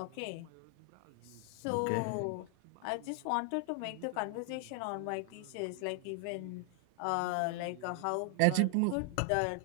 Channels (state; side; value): different; both; correlation 0.00